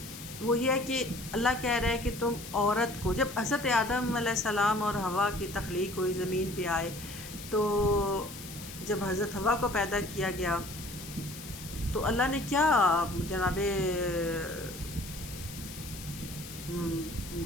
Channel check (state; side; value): noise; left; hiss, 13 dB below the sound